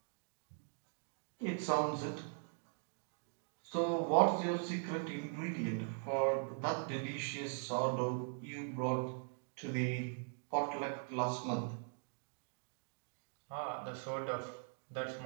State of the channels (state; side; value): silent; left; 51 dB below the other